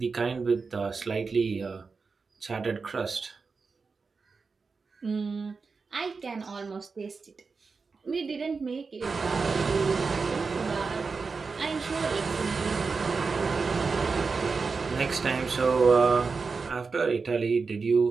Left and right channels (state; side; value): quieter; left; 4.7 dB